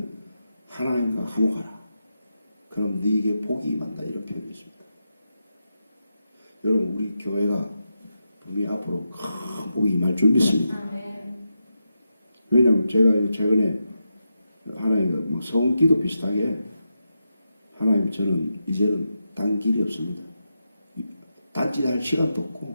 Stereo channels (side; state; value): both; inverted; correlation -0.87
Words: 하나님과 화목하라. 그럼 네게 복이 임한다 이런 표현이 있습니다. 여러분 우리 교회가 분명히 앞으로 큰 복이 임할 줄 믿습니다. 왜냐하면 제가 최근에 하나님 뭐 성기도 비슷하게 하나님 저는 이제는 딴 길이 없습니다. 딴짓할 시간도